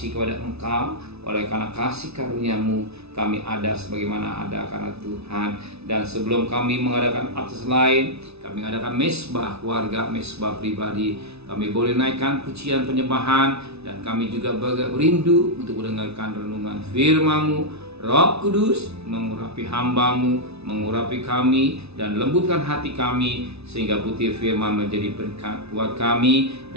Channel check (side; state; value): left; late; 0.80 ms